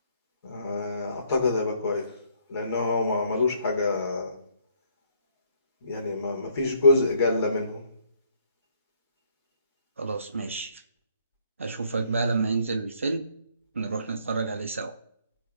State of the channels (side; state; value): both; inverted; correlation -0.66